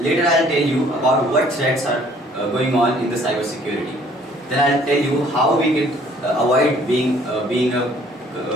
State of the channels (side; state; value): both; normal; correlation 0.58